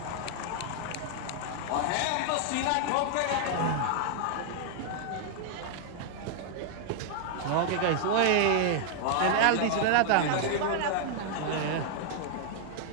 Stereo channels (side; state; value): both; different; correlation 0.00